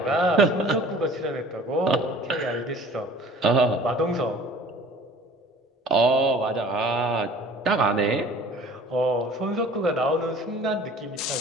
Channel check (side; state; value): both; normal; correlation 0.48